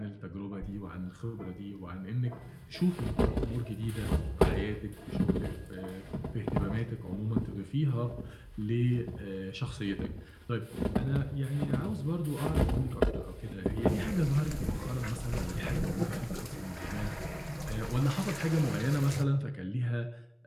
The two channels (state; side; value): identical; both; correlation 1.00